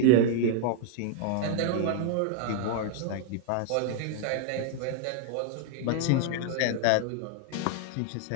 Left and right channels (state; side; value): different; both; correlation 0.00